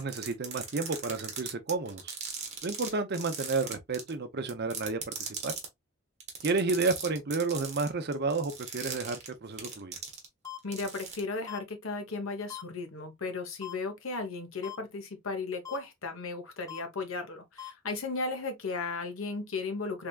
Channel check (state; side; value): normal; both; correlation 0.06